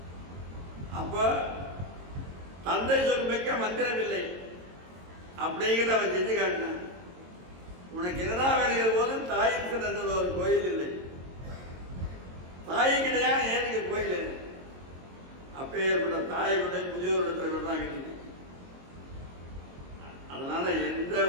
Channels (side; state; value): left; late; 22 ms